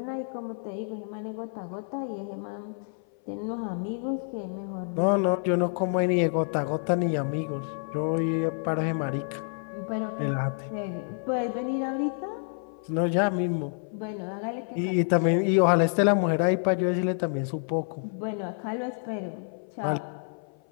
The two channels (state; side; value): silent; right; 57 dB below the other